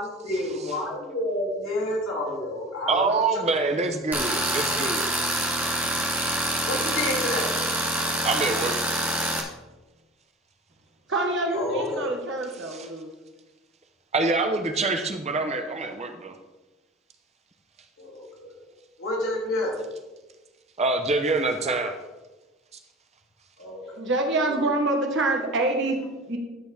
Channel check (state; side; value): normal; both; correlation 0.36